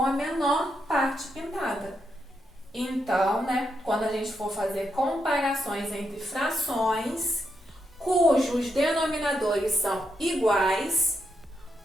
a menor parte pintada. Então, né, quando a gente for fazer comparações entre frações cujos denominadores são iguais,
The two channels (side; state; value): both; normal; correlation 0.82